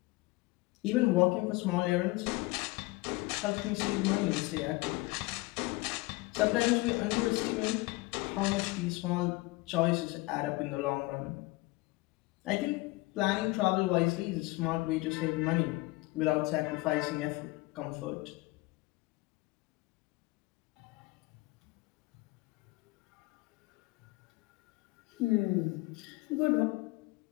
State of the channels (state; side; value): quieter; right; 22.5 dB